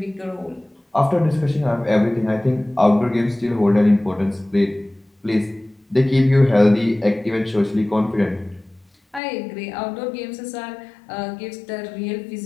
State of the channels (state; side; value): drops out; right; at 9.2 s